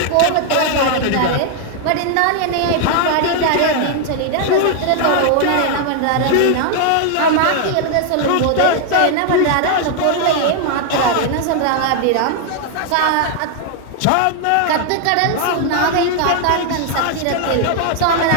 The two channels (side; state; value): both; different; correlation 0.00